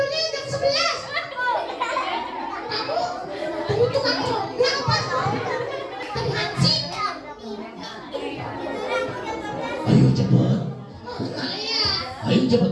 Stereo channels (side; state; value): both; identical; correlation 1.00